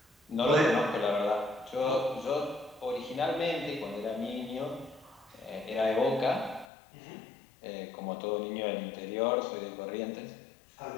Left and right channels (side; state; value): right; drops out; at 6.7 s